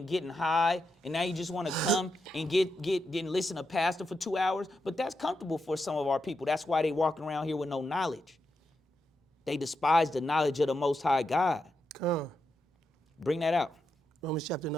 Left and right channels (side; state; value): both; normal; correlation 0.85